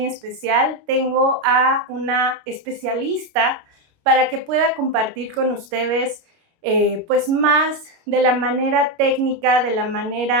especial, tengo a una especialista para que pueda compartir con ustedes pues más de la manera técnica, de la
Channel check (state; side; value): late; left; 29 ms